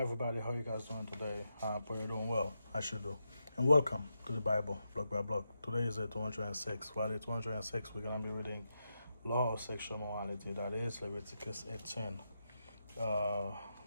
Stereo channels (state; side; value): inverted; both; correlation -0.86